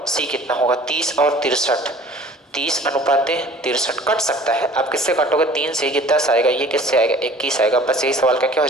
सी कितना होगा। 30 और 63, 30 अनुपात 63 कट सकता है। आप किससे काटोगे, 3 से ये 10 आएगा, ये किससे आएगा 21 आएगा। बस यही सवाल का क्या हो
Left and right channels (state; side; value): normal; both; correlation 0.48